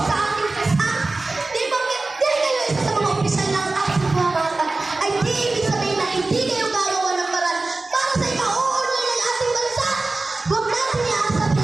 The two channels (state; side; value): quieter; left; 3.3 dB